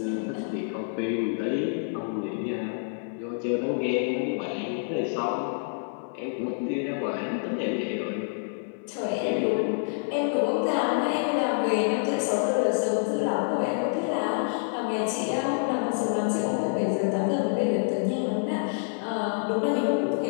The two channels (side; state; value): right; silent; 60 dB below the other